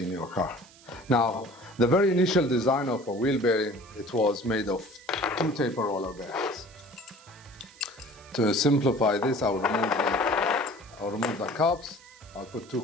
in your car. Now, the very initial design of a wheel bearing, it was made of two taper roller bearings. To simplify this, I'll remove the cups, I'll put two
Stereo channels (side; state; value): right; noise; hiss, 24 dB below the sound